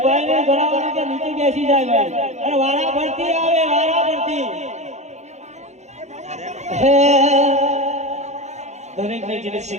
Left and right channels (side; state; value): left; late; 0.33 ms